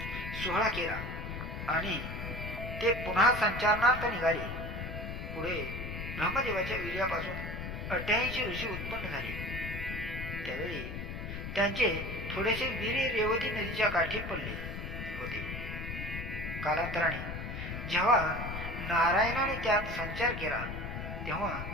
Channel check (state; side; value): noise; left; rumble, 6 dB below the sound